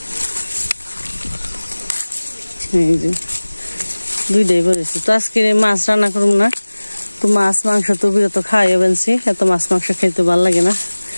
এই যে 2টাই পড়েছে। তো আজকে মাছ রান্না করুন না, তো মাছ মাংস তো বিরত খাওয়াই বেনছি, এত মাছ মাংস খাইতে ভালো লাগে না।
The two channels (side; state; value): both; inverted; correlation -1.00